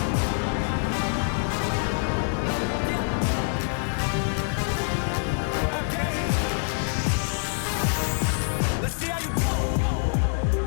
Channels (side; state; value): right; silent; 61 dB below the other